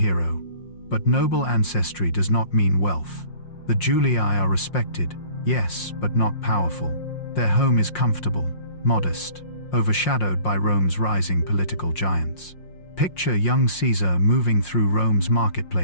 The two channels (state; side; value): late; right; 5.6 ms